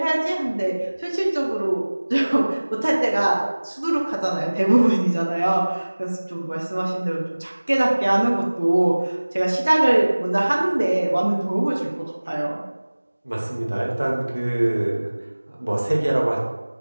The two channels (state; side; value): inverted; both; correlation -1.00